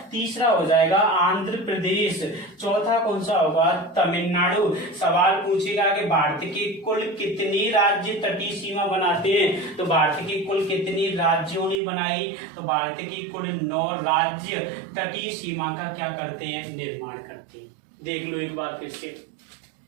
तीसरा हो जाएगा आंध्र प्रदेश। चौथा कौन सा होगा, तमिलनाडु। सवाल पूछेगा कि भारत के कुल कितने राज्य तटीय सीमा बनाते हैं, तो भारत के कुल कितने राज्यों ने बनाई, तो भारत के कुल 9 राज्य तटीय सीमा का क्या करते हैं, निर्माण करते हैं। देख लो एक बार फिर से,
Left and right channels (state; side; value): drops out; left; at 11.8 s